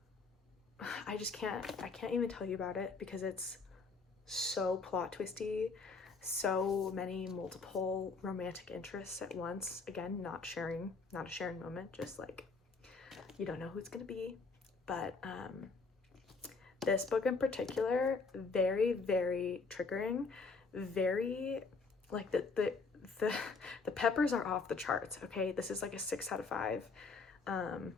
I can't even tell you about it because it's so plot twisty, so many multiple romantic interests at once. Again, not a sharing moment, just like, you don't know who it's gonna be. But this book in particular, very, very triggering, very, like, the peppers are off the charts, okay? This is like a 6 out of 5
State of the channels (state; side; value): quieter; right; 4.3 dB